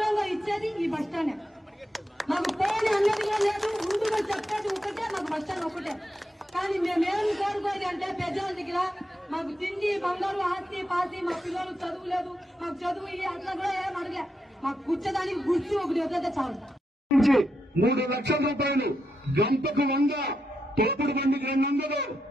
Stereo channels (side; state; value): both; normal; correlation 0.84